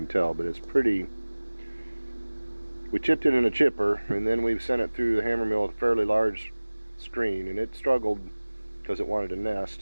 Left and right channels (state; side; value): inverted; both; correlation -1.00